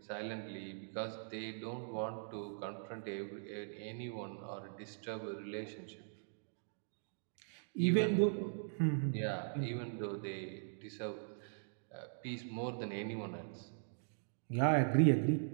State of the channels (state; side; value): silent; left; digital silence